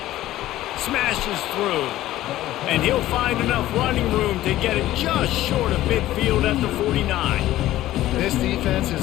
Smashes through. And he'll find enough running room to get it just short of midfield at the 49. This defense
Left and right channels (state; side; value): quieter; right; 14.8 dB